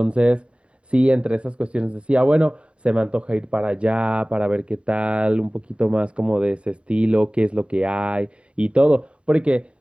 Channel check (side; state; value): left; late; 0.059 ms